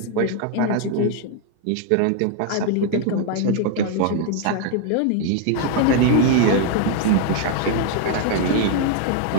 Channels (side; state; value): both; different; correlation 0.00